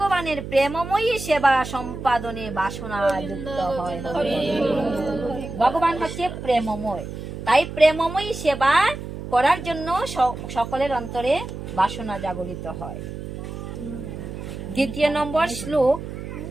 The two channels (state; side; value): noise; right; hum, 9 dB below the sound